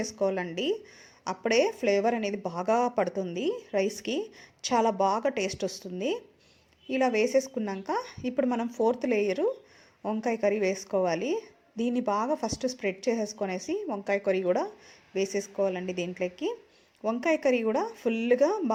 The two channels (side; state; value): both; identical; correlation 1.00